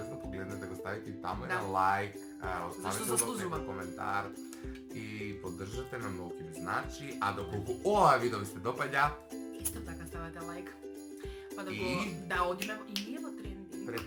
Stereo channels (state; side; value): identical; both; correlation 1.00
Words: погледнете, го ставите и таму Да. на лайк, Зашто оставете заслужува. некој коментар и поддржате на многу ви значи, а доколку ова видео ви се допаѓа, Исто така ставате лайк. Па да го И? да одиме и ние во трендинг.